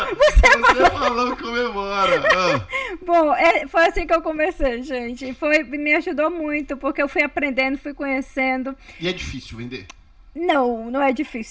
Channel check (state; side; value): identical; both; correlation 1.00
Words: Você falou comemora! Ah. Bom, foi assim que eu comecei, gente. Me ajudou muito, porque eu fui aprendendo, fui conhecendo. E é difícil vender? Não é